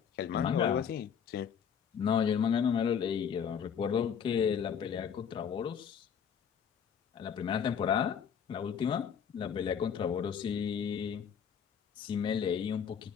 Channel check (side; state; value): right; quieter; 7.6 dB